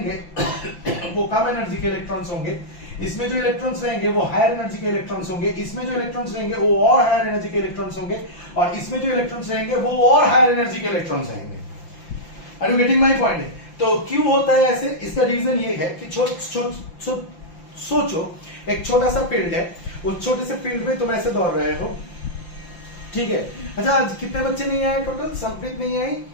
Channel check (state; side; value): late; right; 5.8 ms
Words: वो कम एनर्जी के इलेक्ट्रॉन्स होंगे, इसमें जो इलेक्ट्रॉन्स रहेंगे वो हायर एनर्जी के इलेक्ट्रॉन्स होंगे, इसमें जो इलेक्ट्रॉन्स रहेंगे वो और हायर एनर्जी के इलेक्ट्रॉन्स होंगे और इसमें जो इलेक्ट्रॉन्स रहेंगे वो और हायर एनर्जी के इलेक्ट्रॉन्स रहेंगे। Are you getting my point? तो क्यों होता है ऐसे? इसका रीजन ये है कि सोचो एक छोटा सा फील्ड है, उस छोटे से फील्ड में तुम ऐसे दौड़ रहे हो, ठीक है। अच्छा, आज कितने बच्चे नहीं आए टोटल? संप्रीत नहीं आई,